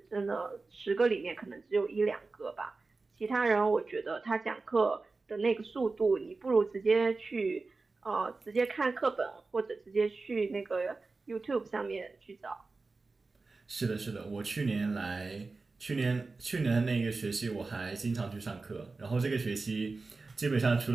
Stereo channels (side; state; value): left; quieter; 3.8 dB